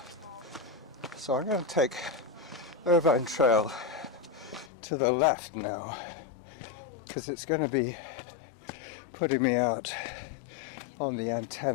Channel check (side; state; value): right; drops out; at 4.7 s